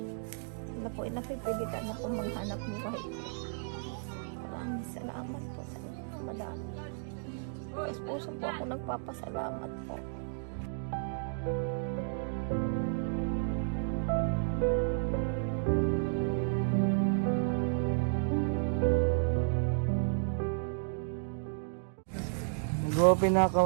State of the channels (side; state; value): left; silent; digital silence